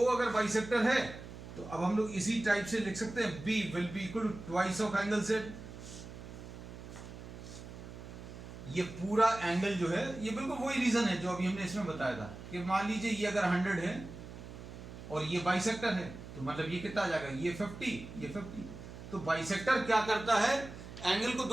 अगर बाइसेक्टर है तो अब हम लोग इसी टाइप से लिख सकते हैं, B will be equal to twice of angle Z। ये पूरा एंगल जो है, ये बिल्कुल वही रीजन है जो अभी हमने इसमें बताया था कि मान लीजिए ये अगर 100 है और ये बाइसेक्टर है, तो मतलब ये कितना आ जाएगा? ये 50, ये 50। तो बाइसेक्टर क्या करता है? एंगल को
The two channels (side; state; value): right; noise; hum, 13 dB below the sound